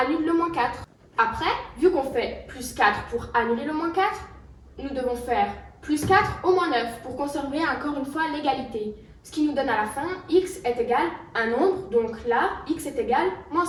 le moins 4. Après, vu qu'on fait plus 4 pour annuler le moins 4, nous devons faire plus 4 au moins 9 pour conserver encore une fois l'égalité. Ce qui nous donne à la fin x est égal à un nombre, donc là, x est égal à moins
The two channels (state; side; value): identical; both; correlation 1.00